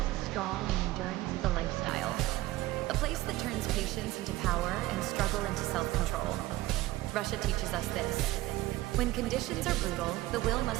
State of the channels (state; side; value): quieter; left; 17.4 dB